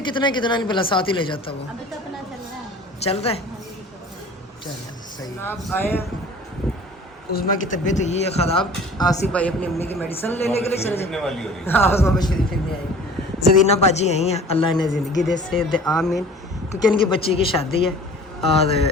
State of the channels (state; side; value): normal; both; correlation 0.45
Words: कितना कितना नहीं भला साथ ही ले जाता वो। अभी तो अपना चल रहा है। चल रहा है चल सही। आप आए उस्मा की तबीयत हुई है ख़राब, आसिफ भाई अपनी अम्मी की मेडिसिन लेने के लिए चले फिरने वाली हो रही है। हाँ उस्मा शरीफ फिरने आई। जरीना बाजी यहीं है, अल्लाह ने ज़िंदगी दे से दे आमीन, क्योंकि इनकी बच्ची की शादी है और